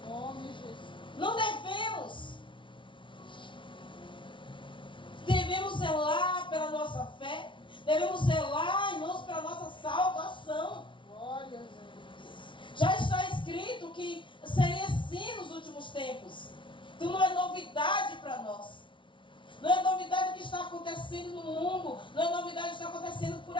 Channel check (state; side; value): late; right; 0.24 ms